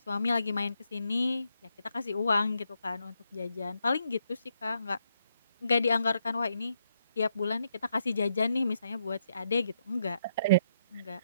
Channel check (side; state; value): both; inverted; correlation -0.78